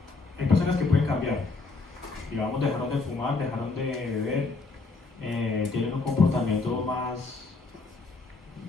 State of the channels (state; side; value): quieter; right; 3.9 dB